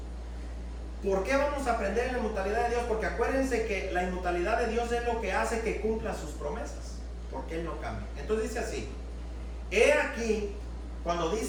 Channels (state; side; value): identical; both; correlation 1.00